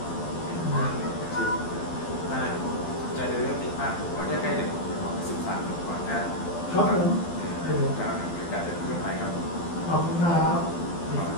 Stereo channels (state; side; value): late; right; 12 ms